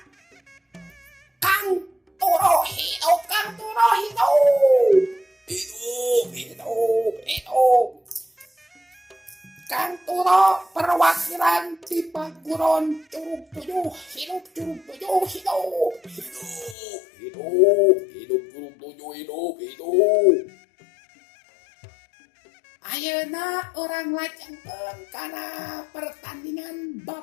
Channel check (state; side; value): drops out; right; at 16.8 s